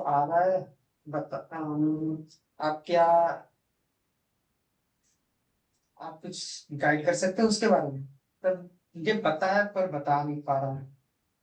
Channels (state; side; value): identical; both; correlation 1.00